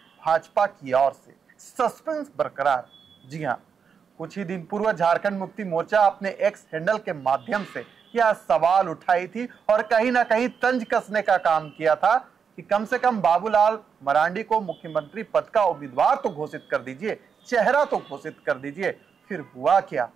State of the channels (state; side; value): quieter; left; 6.5 dB